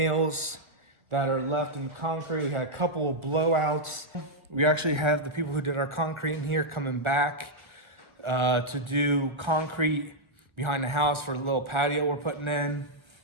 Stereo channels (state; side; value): late; left; 1.4 ms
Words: that are left in the concrete. We had a couple of blowouts. We actually have the people who did our concrete in here coming back to do concrete behind the house for the little patio we're putting in.